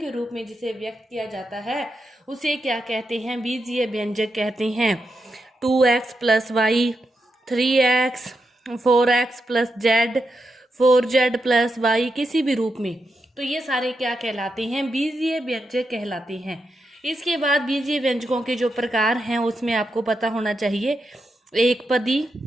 रूप में जिसे व्यक्त किया जाता है उसे क्या कहते हैं? बीजीय व्यंजक कहते हैं। 2x plus Y, 3x, 4x plus Z, 4z plus Y, किसी भी रूप में, तो ये सारे क्या कहलाते हैं? बीजीय व्यंजक कहलाते हैं। इसके बाद बीजीय व्यंजकों के जो प्रकार हैं उसमें आपको पता होना चाहिए एक पदी,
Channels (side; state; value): both; normal; correlation 0.86